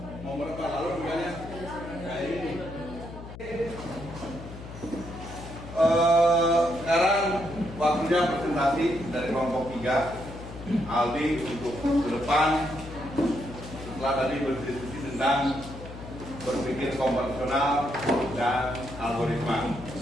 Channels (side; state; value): left; noise; hum, 13 dB below the sound